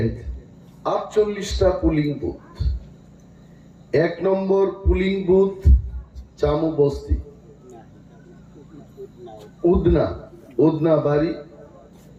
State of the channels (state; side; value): identical; both; correlation 1.00